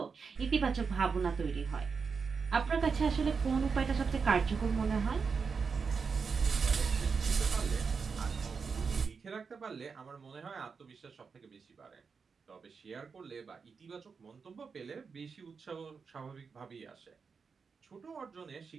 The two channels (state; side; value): quieter; left; 5.4 dB